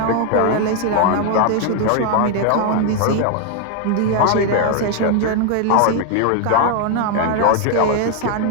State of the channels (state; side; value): different; both; correlation 0.00